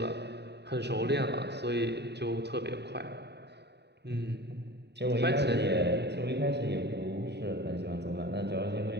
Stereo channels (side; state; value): left; late; 0.49 ms